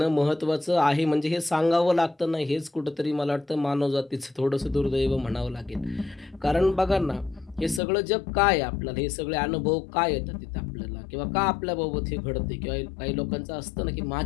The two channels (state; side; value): drops out; right; at 7.8 s